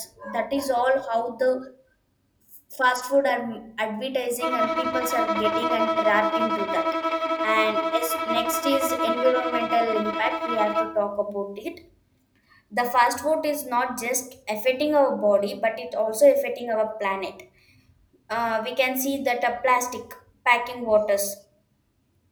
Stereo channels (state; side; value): identical; both; correlation 1.00